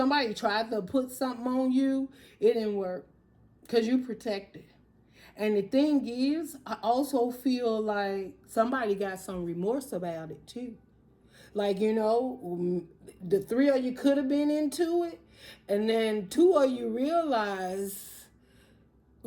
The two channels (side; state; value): both; identical; correlation 1.00